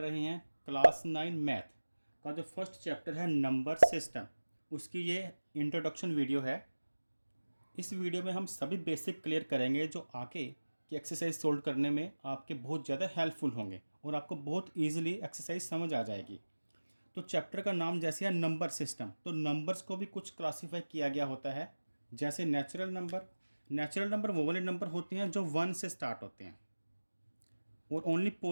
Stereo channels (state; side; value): inverted; both; correlation -1.00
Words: हैं क्लास 9 मैथ का जो फर्स्ट चैप्टर है नंबर सिस्टम, उसकी ये इंट्रोडक्शन वीडियो है। इस वीडियो में हम सभी बेसिक क्लियर करेंगे जो आगे की एक्सरसाइज सोल्व करने में आपके बहुत ज़्यादा हेल्पफुल होंगे और आपको बहुत ईजिली एक्सरसाइज समझ आ जाएगी। तो चैप्टर का नाम जैसे है नंबर सिस्टम, तो नंबर्स को भी कुछ क्लासीफाई किया गया होता है। जैसे नेचुरल नंबर वो वाले नंबर होते हैं जो 1 से स्टार्ट होते हैं और ओनली